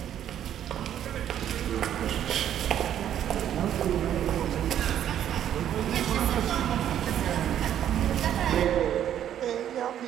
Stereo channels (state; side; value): quieter; left; 10.5 dB